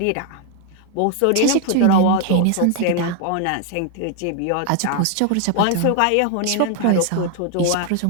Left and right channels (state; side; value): different; both; correlation 0.00